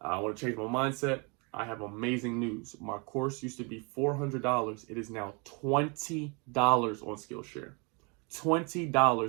I want to change my mindset. I have amazing news. My course used to be $400. It is now $20 on Skillshare.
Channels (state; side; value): quieter; left; 32.1 dB